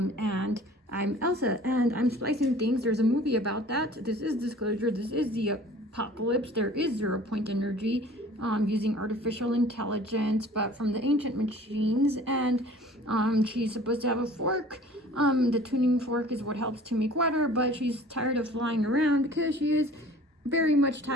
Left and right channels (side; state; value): both; normal; correlation 0.47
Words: I'm Elsa, and I'm splicing things. There's a movie about that. This is disclosure. This is the apocalypse. There is 0-point energy. Using artificial intelligence, but from the ancient machines, and she's supposed to have a fork. The tuning fork is what helps to make water, but she's tired of flying around because she is very much